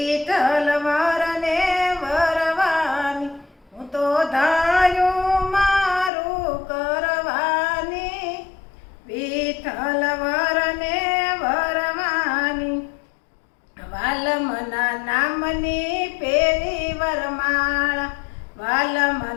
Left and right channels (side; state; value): right; drops out; at 6.1 s